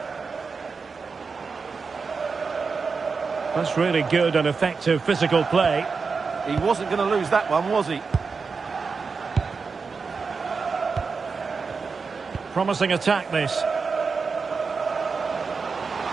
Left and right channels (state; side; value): quieter; left; 4.9 dB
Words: That's really good and effective physical play. He wasn't going to lose that one, was he? Promising attack, this.